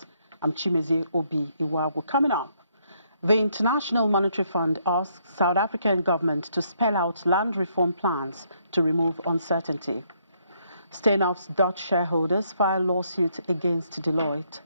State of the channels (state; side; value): inverted; both; correlation -0.72